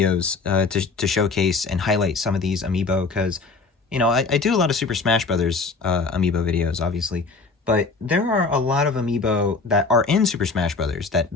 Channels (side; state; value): right; quieter; 4.2 dB